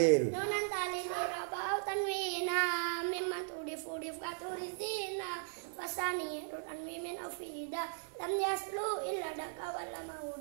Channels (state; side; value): silent; left; 53 dB below the other